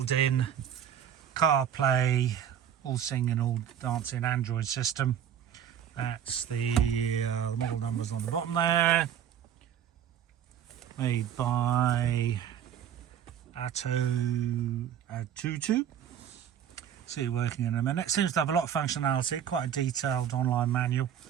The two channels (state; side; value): quieter; left; 9.4 dB